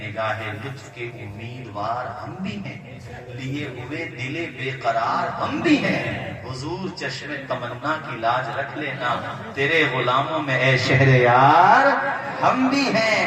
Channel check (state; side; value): identical; both; correlation 1.00